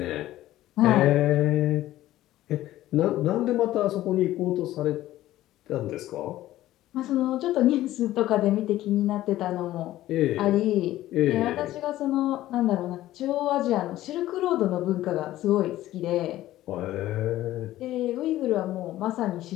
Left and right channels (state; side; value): quieter; right; 14.8 dB